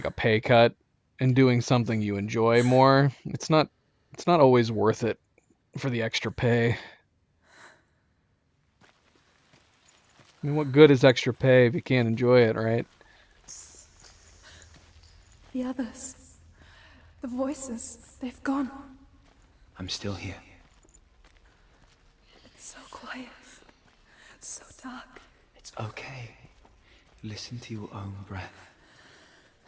a pay cut and doing something you enjoy more. It's not always worth it for the extra pay. I mean, what good is extra pay if you can't enjoy it, right? The others. The voices. They've gone. I'm still here. It's so quiet. So dark. It's okay. Listen to your own breath.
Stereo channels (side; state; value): both; identical; correlation 1.00